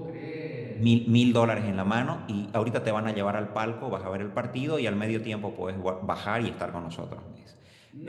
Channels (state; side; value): identical; both; correlation 1.00